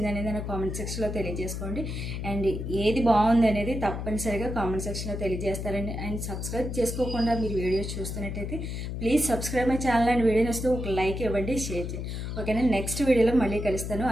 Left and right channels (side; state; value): left; noise; hum, 5 dB below the sound